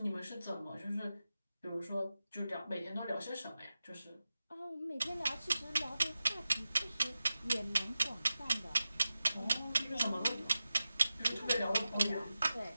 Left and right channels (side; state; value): both; inverted; correlation -0.93